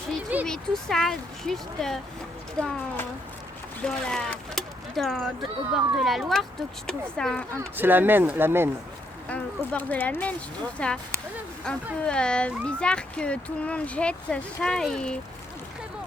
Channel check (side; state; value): both; normal; correlation 0.74